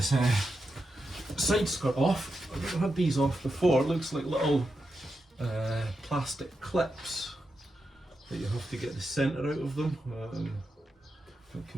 side skirt off. I've never had these off before. It looks like little plastic clips that you have to get the centre out of them. That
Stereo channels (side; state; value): both; normal; correlation 0.87